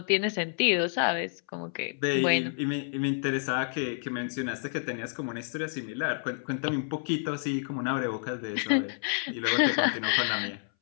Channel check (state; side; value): silent; right; 58 dB below the other